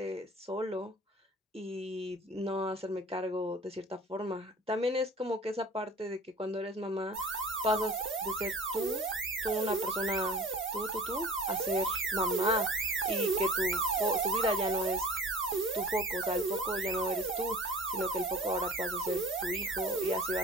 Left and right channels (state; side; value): normal; both; correlation 0.43